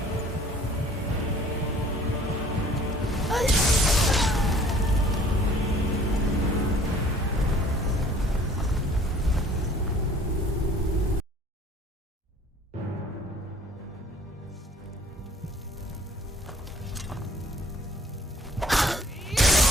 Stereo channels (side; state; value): both; normal; correlation 0.53